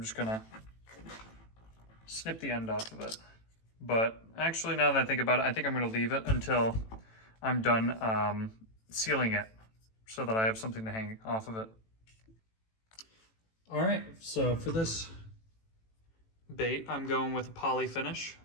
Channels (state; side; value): late; right; 18 ms